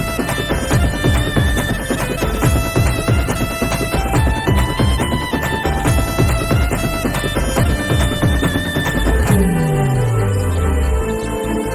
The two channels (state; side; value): identical; both; correlation 1.00